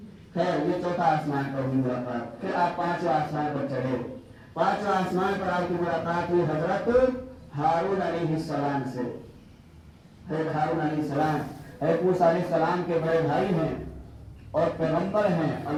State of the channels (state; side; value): identical; both; correlation 1.00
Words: خیر, یہ 4تھا آسمان پر ہوئی ملاقات. پھر آپ 5ویں آسمان پر چڑھے. 5ویں آسمان پر آپ کی ملاقات ہوئی حضرت ہارون علیہ السلام سے. حضرت ہارون علیہ السلام حضرت موسیٰ علیہ السلام کے بڑے بھائی ہیں اور پیغمبر ہیں,